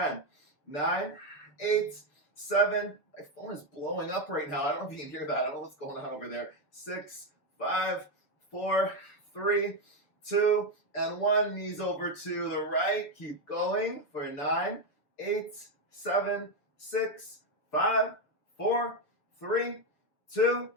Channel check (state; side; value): late; right; 6.8 ms